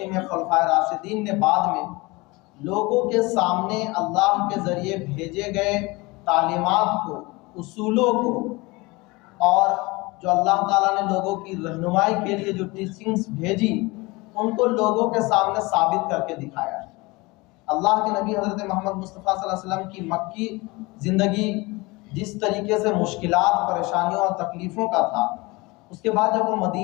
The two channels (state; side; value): quieter; right; 23.9 dB